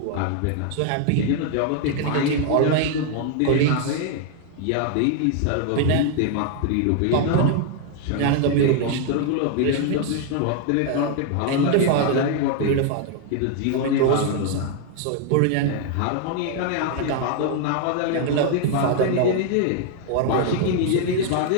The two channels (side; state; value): both; different; correlation 0.00